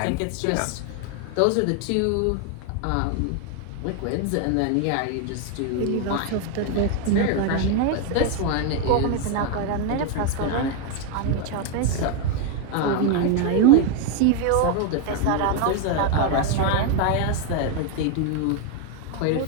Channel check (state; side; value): different; both; correlation 0.01